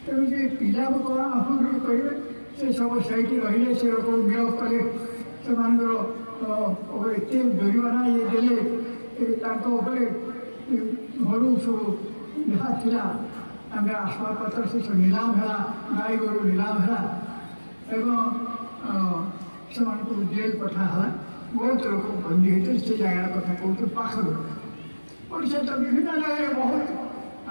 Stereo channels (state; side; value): inverted; both; correlation -1.00